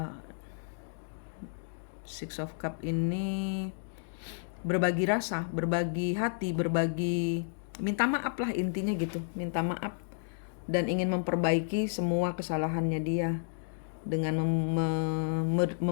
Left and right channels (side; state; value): right; silent; digital silence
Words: Six of Cup ini berbagi rasa, berbagi hati, minta maaf lah intinya gitu, minta maaf dan ingin memperbaiki semua kesalahannya dia dengan